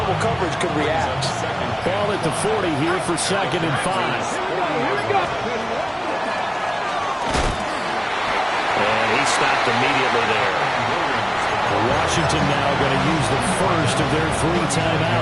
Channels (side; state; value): both; identical; correlation 1.00